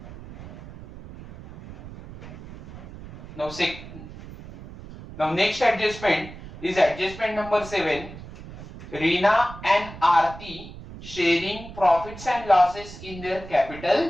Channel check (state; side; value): noise; right; rumble, 14 dB below the sound